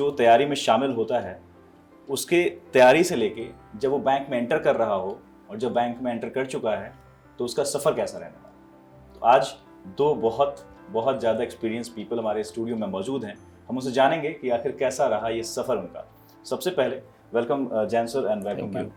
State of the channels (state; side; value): identical; both; correlation 1.00